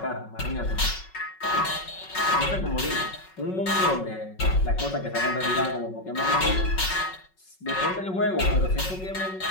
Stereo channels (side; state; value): right; late; 5.4 ms